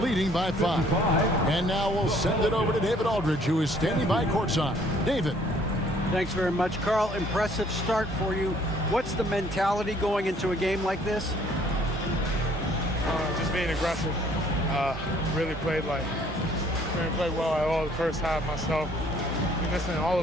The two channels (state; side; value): normal; both; correlation 0.60